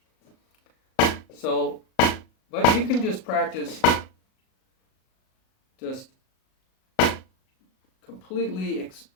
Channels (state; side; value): late; right; 37 ms